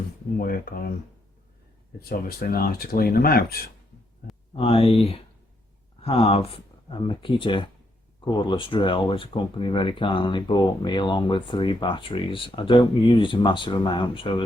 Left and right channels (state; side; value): normal; both; correlation 0.77